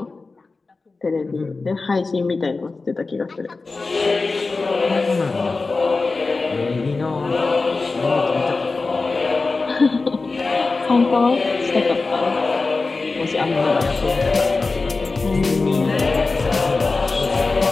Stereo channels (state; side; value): quieter; right; 3.8 dB